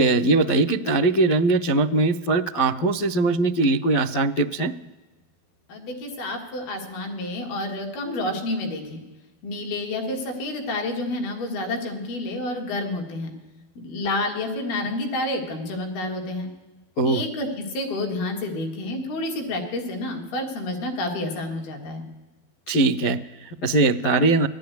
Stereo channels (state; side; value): late; right; 12 ms